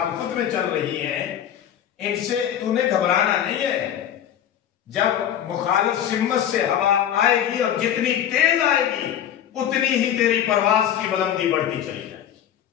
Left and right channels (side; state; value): right; quieter; 10.2 dB